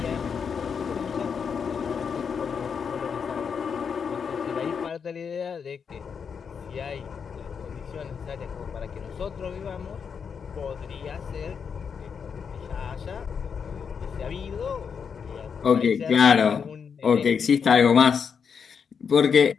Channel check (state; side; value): quieter; right; 6.5 dB